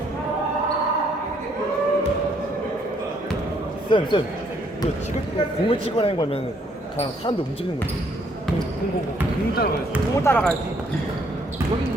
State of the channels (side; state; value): both; normal; correlation 0.68